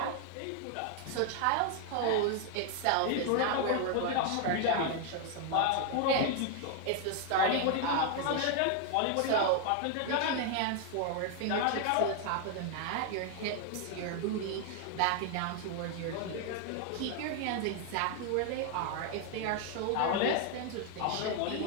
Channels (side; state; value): both; different; correlation 0.00